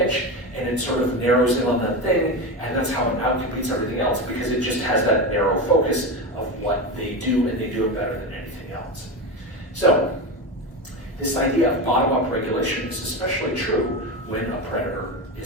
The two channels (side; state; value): both; normal; correlation 0.19